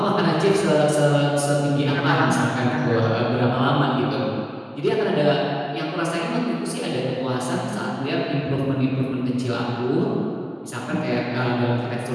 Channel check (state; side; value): identical; both; correlation 1.00